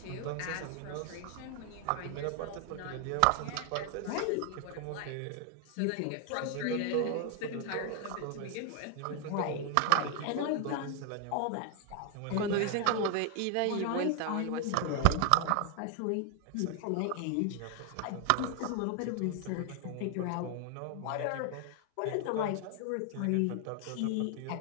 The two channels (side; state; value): both; different; correlation 0.00